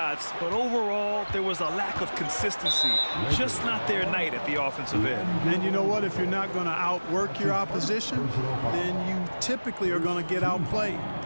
but overall, there was a lack of consistency. Just not their night at the offensive end. And you know what? If you're not going to outwork your opposition, then you typically are going to get outplayed.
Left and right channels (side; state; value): both; inverted; correlation -1.00